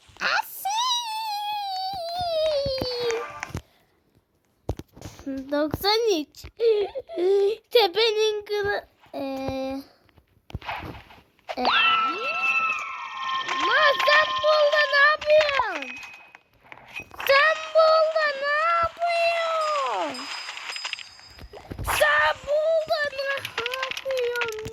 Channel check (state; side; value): identical; both; correlation 1.00